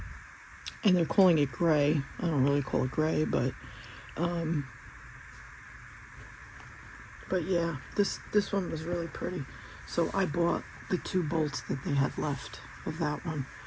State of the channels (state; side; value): identical; both; correlation 1.00